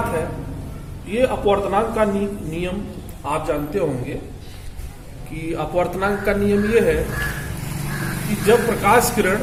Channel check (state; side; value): identical; both; correlation 1.00